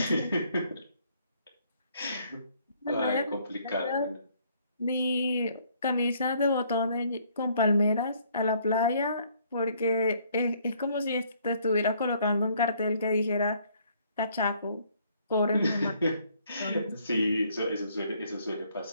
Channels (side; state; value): both; inverted; correlation -0.65